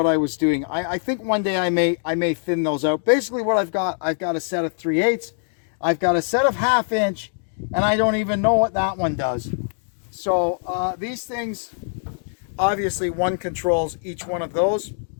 I was doing. I think one day I may thin those out. Basically what I've got a set of 3/8. I've got a set of 1/2 inch, and I don't even know what that one does. So these things, obviously one controls each one of those.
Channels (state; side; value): silent; right; digital silence